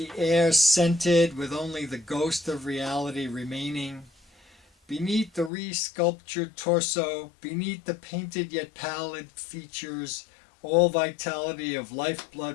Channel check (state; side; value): drops out; right; at 5.5 s